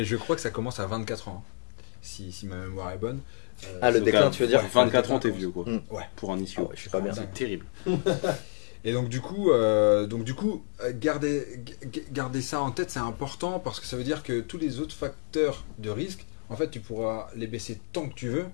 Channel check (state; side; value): silent; right; 58 dB below the other